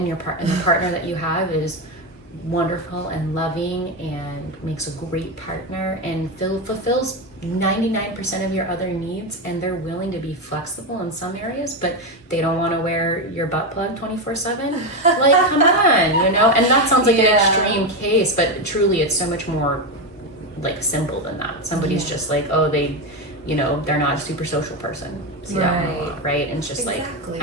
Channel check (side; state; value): both; normal; correlation 0.11